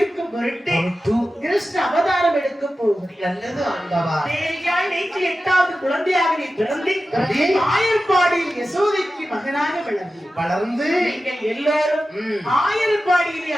பொருட்டு கிருஷ்ண அவதாரம் எடுக்க போகிறேன். நல்லது ஆண்டவா. தேவியாய் நேற்று 8வது குழந்தையாக நீ பிறந்து ஆயர்பாடியில் யசோதைக்கு மகனாக வளர்ந்து நீங்கள் எல்லாரும் ஆயர்பாடியிலே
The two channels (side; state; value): both; normal; correlation 0.94